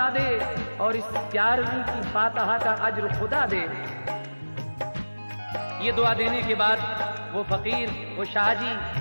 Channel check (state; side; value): inverted; both; correlation -1.00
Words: दे और इस 11वीं की फातिहा का अज्र खुदा दे। ये दुआ देने के बाद वो फकीर, वो शाह जी